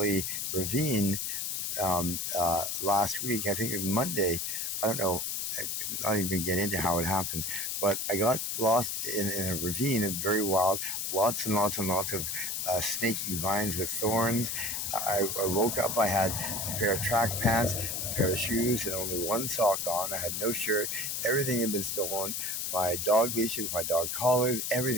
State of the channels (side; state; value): left; noise; hiss, 2 dB below the sound